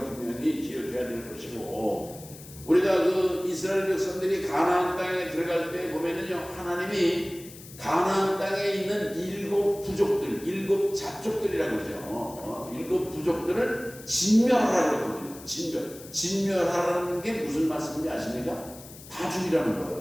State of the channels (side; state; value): left; noise; hiss, 17 dB below the sound